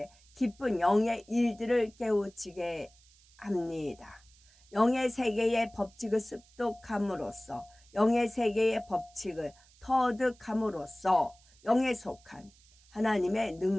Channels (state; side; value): noise; right; hiss, 28 dB below the sound